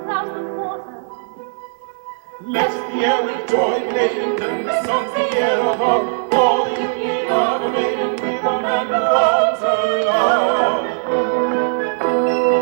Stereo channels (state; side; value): silent; left; digital silence